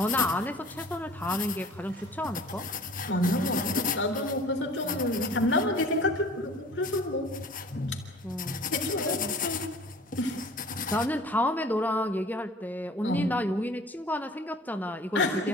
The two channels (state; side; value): normal; both; correlation 0.46